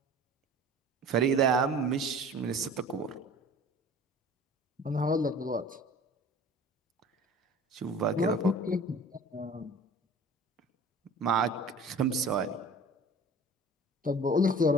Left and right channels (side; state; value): both; normal; correlation 0.44